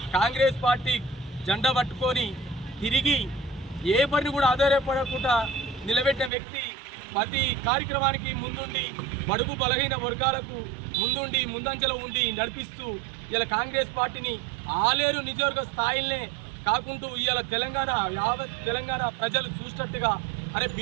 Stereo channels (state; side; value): drops out; left; at 6.3 s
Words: కాంగ్రెస్ పార్టీ జెండా పట్టుకొని తిరిగి ఏ పని కూడా ఆధారపడకుండా నిలబెట్టిన వ్యక్తి. ప్రతి కార్యక్రమానికి ముందుండి బడుగు బలహీన వర్గాలకు ముందంజలో ఉండి నడిపిస్తూ ఇలా కాంగ్రెస్ పార్టీని ఆలేరు నియోజకవర్గ స్థాయిలనే కాకుండా ఇవాళ యావత్ తెలంగాణ ప్రజలు చూసినట్టుగా, అరే